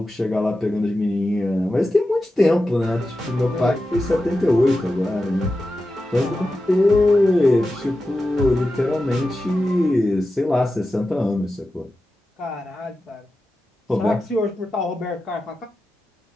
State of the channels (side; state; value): both; normal; correlation 0.92